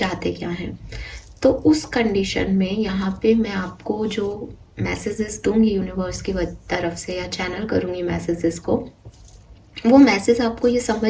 क्या हैं। तो उस कंडीशन में यहाँ पे मैं आपको जो मैसेजेस दूंगी यूनिवर्स की तरफ से या चैनल करूँगी मैसेजेस को, वो मैसेज आपको ये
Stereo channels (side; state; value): both; identical; correlation 1.00